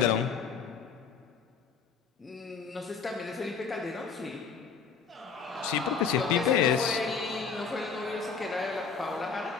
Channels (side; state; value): right; quieter; 5.8 dB